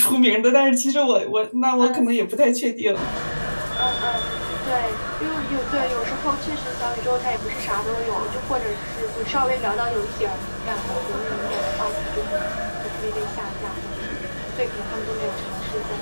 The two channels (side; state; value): both; inverted; correlation -1.00